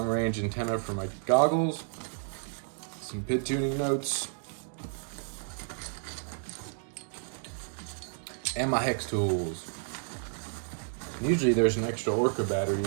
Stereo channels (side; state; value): left; silent; digital silence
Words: range antenna for my goggles, some PID tuning notes, and my hex tools. Usually there's an extra Orca battery